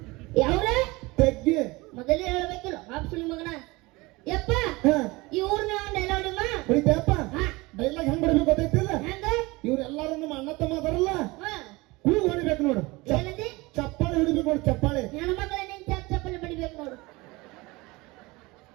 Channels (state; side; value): quieter; left; 22.9 dB